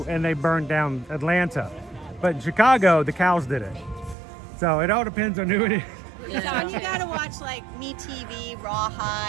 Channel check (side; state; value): left; drops out; at 4.2 s